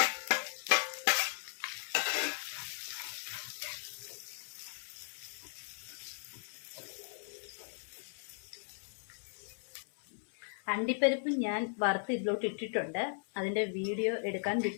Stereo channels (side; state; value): right; silent; 53 dB below the other